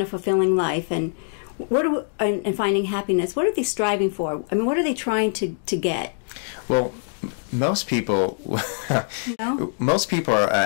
a fulfilling life and and finding happiness, what are they striving for? I mean, what are they trying to get? Well, most people are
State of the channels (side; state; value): right; silent; digital silence